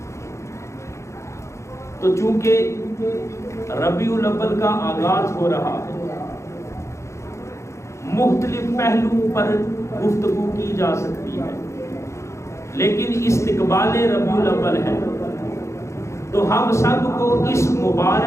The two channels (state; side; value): late; right; 0.14 ms